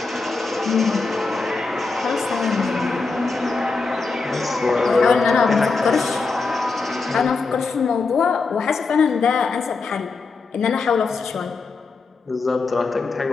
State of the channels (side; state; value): right; quieter; 4.2 dB